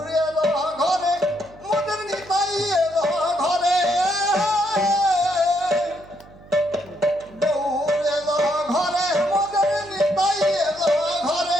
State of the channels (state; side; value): noise; right; hum, 23 dB below the sound